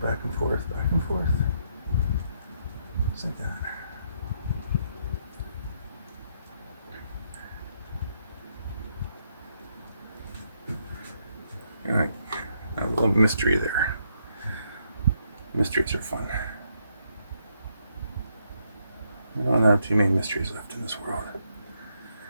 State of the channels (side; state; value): both; inverted; correlation -0.75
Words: Back and forth, back and forth. Just like that. mystery there. Mysteries are fun. We don't have too many mysteries left in this world.